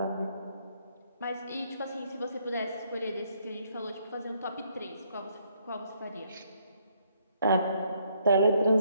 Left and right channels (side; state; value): both; inverted; correlation -0.70